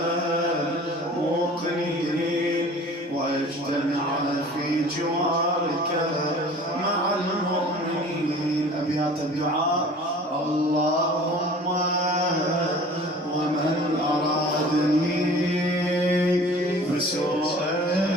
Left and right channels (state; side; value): normal; both; correlation 0.45